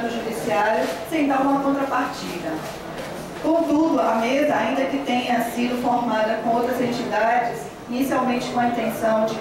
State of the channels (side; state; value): both; identical; correlation 1.00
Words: judiciário sem dar uma contrapartida. Contudo, a mesa, ainda que tenha sido formada com outras entidades, inicialmente com a intenção de